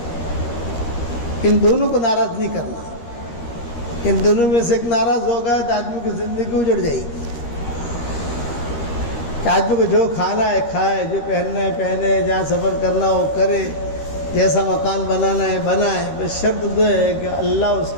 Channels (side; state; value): right; late; 13 ms